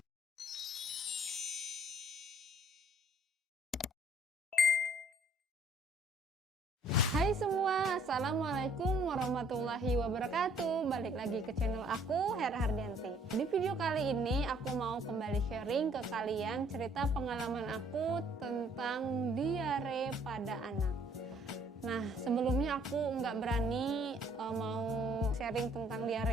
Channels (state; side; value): normal; both; correlation 0.61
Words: Hai semua, assalamualaikum warahmatullahi wabarakatuh. Balik lagi ke channel aku, Hera Hardianti. Di video kali ini aku mau kembali sharing ke kalian cerita pengalaman aku tentang diare pada anak. Nah, sebelumnya aku nggak berani mau sharing tentang